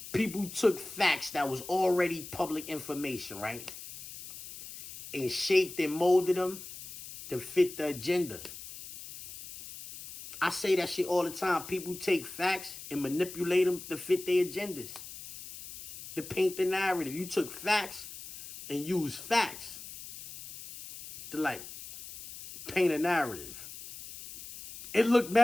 people took facts that was already public information, right? And shaped and molded them to fit the agenda. I say that shit all the time. People take facts and manipulate them to fit their agendas. To paint the narrative. You took facts and used facts to, like, paint a narrative. It looked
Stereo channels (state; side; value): noise; left; hiss, 13 dB below the sound